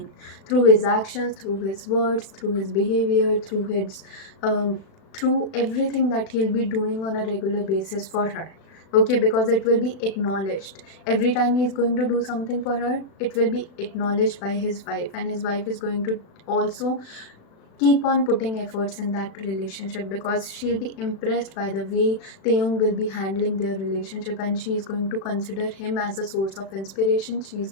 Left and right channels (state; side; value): late; right; 36 ms